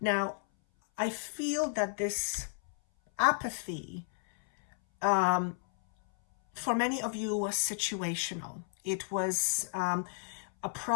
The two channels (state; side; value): silent; right; 56 dB below the other